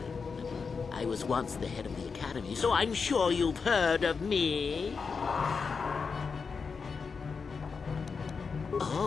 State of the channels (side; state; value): right; quieter; 5.2 dB